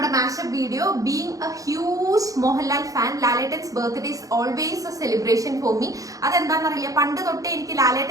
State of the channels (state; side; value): late; left; 0.17 ms